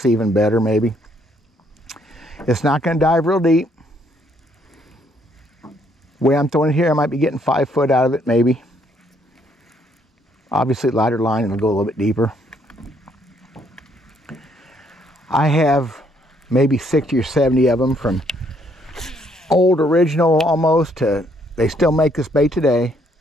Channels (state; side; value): normal; both; correlation 0.69